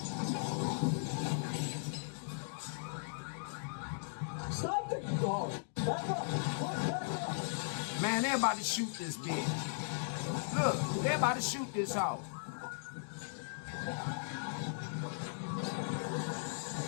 Stop the car! Back up! Man, they're about to shoot this bitch. Look, they're about to shoot this hoe.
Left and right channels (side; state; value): right; silent; digital silence